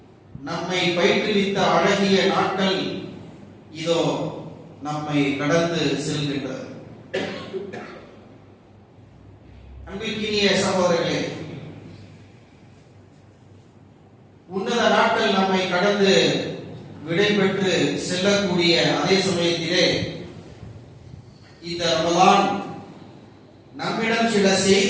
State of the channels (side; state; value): both; identical; correlation 1.00